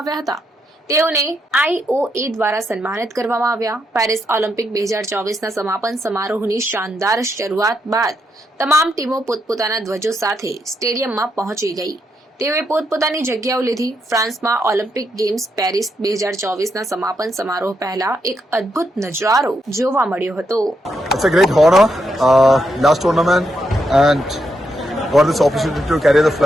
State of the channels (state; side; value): normal; both; correlation 0.80